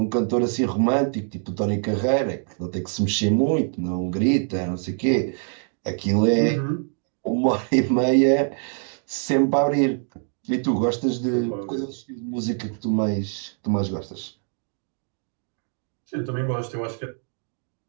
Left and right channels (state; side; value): silent; left; 56 dB below the other